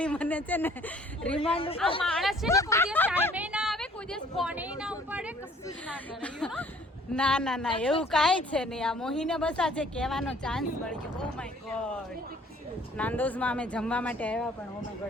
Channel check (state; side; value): normal; both; correlation 0.56